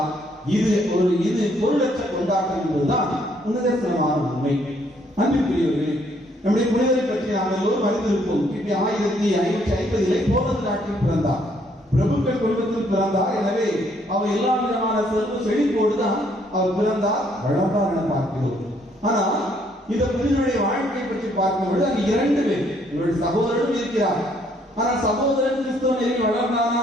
இது பொருளற்ற கொண்டாட்டம் என்பதுதான் நிதர்சனமான உண்மை. அன்புக்குரியவர்களே, நம்முடைய புனிதரை பற்றி நாம் எல்லோரும் அறிந்திருப்போம். கிபி 1550 போலந்து நாட்டில் பிறந்தார். பிரபுக்கள் குடும்பத்தில் பிறந்தார். எனவே அவர் எல்லா விதமான செல்வ செழிப்போடுதான் அவர் பிறந்தார், வளர்ந்தார் என பார்க்கிறோம். ஆனால் இந்த புனிதனுடைய வாழ்க்கை பற்றி பார்க்கும்போது அங்கு 2 பேர், இவருடைய சகோதரனும் இருக்கிறார். ஆனால் சகோதரன் கிறிஸ்தவ நெறியில் வளர்ந்தானா?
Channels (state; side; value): normal; both; correlation 0.67